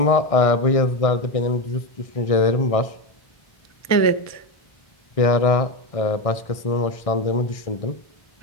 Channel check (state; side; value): late; right; 1.6 ms